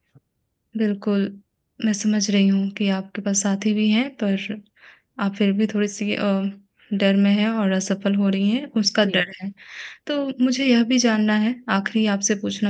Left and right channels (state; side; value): identical; both; correlation 1.00